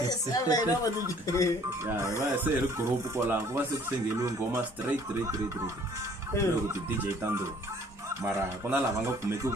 va se ri group kwalaho ku va se ku sengeliwe ngoma straight loko ti-DJ ta ndhuma mara ku na lava nga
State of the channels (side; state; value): both; normal; correlation 0.56